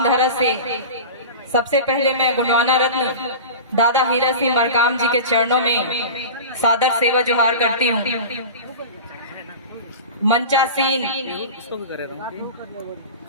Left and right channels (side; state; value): both; inverted; correlation -0.31